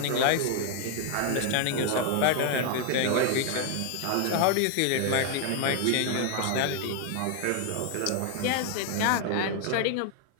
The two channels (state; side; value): different; both; correlation 0.00